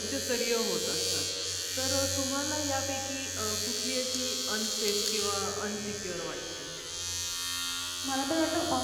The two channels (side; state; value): both; identical; correlation 1.00